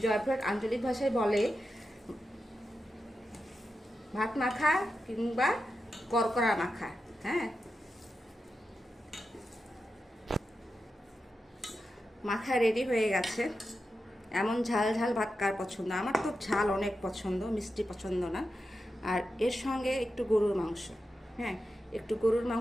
জয়পুরহাট আঞ্চলিক ভাষায় বলে ভাত মাখা কিংবা করকরা মাখা। হ্যাঁ, মাখা রেডি হয়ে গেছে। এমন ঝাল ঝাল ভাত কার পছন্দ? আমার তো ঝাল অনেক পছন্দ, মিষ্টি পছন্দ না। আর এর সঙ্গে একটু গরুর মাংস। হ্যাঁ, একটু গরুর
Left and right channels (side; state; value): both; normal; correlation 0.90